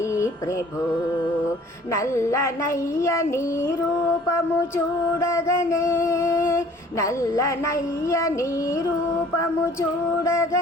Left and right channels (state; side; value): normal; both; correlation 0.52